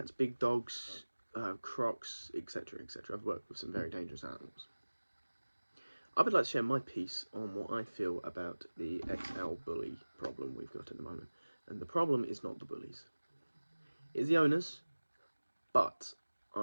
big dogs, crocs, etc, etc. I've worked with some very dangerous animals. I would like to share my piece on what I feel about the XL bully problem we've got at the moment. And the problem is not the bullies. It's the owners, but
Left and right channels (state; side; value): inverted; both; correlation -1.00